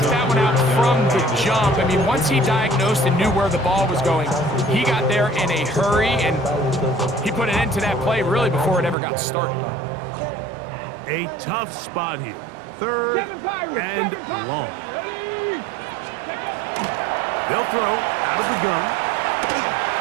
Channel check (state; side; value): drops out; left; at 9.0 s